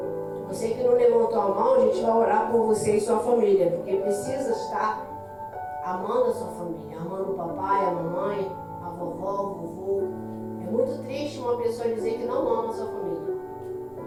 Você que não levantou a mão, a gente vai orar por você e sua família, porque precisa estar amando a sua família, amando o papai, a mamãe, a vovó, o vovô. É muito triste uma pessoa dizer que não ama a sua família.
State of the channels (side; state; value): both; identical; correlation 1.00